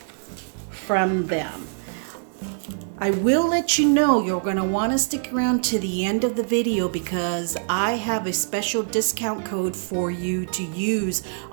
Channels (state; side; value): silent; left; digital silence